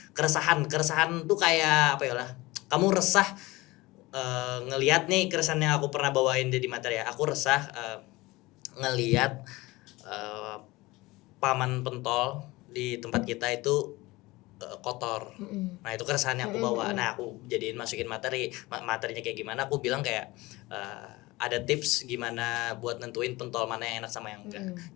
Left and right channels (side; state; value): right; quieter; 20.9 dB